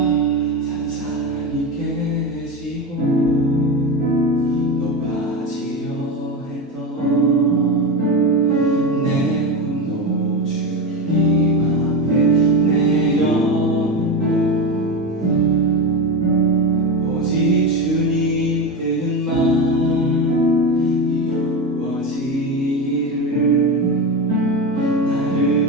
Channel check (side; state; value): both; normal; correlation 0.18